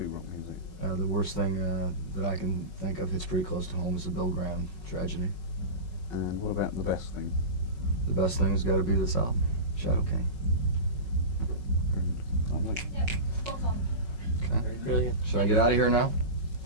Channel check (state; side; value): late; left; 5.4 ms